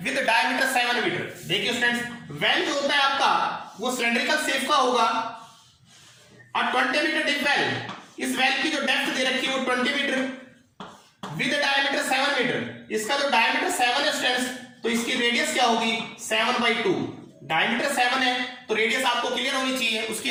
with diameter 7 metre. देखिए स्टूडेंट्स, वेल जो होता है आपका वो सिलेंड्रिकल शेप का होगा। a 20 मीटर डीप वेल, इस वेल की जो डेप्थ दे रखी है वो 20 मीटर विद डायमीटर 7 मीटर। इसका जो डायमीटर 7 है स्टूडेंट्स, तो इसकी रेडियस क्या होगी 7/2। डायमीटर 7 है तो रेडियस आपको क्लियर होनी चाहिए, उसकी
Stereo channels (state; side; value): identical; both; correlation 1.00